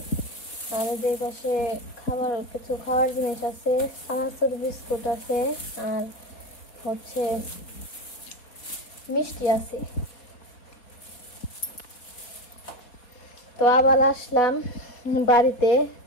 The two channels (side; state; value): right; late; 4.3 ms